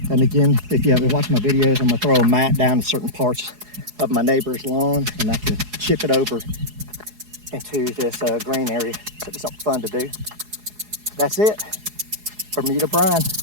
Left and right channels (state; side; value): late; left; 4.8 ms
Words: And again, if you haven't watched my videos, I'm gonna throw a mat down to certain parts of my neighbor's lawn, and I can chip it over into this green area. So it's something fun to do. That's it. Bermuda Brian.